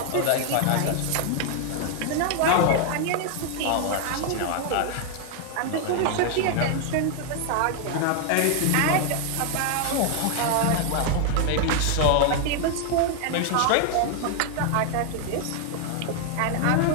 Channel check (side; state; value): both; different; correlation 0.00